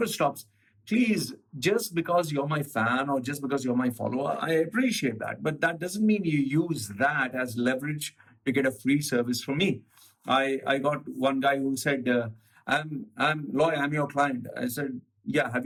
stops. Please, just because you're my fan or just because you're my follower, I appreciate that. But that doesn't mean you use that as leverage to get a free service from me. I got one guy who said, I'm Loy, I'm your client. I said, yeah, have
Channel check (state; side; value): identical; both; correlation 1.00